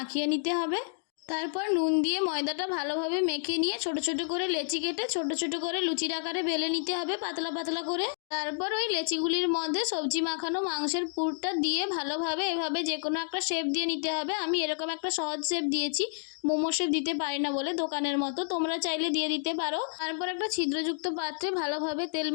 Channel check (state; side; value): silent; right; digital silence